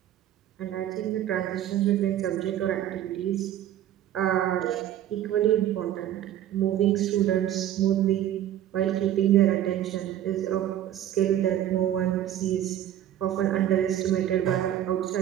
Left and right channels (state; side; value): quieter; left; 11.7 dB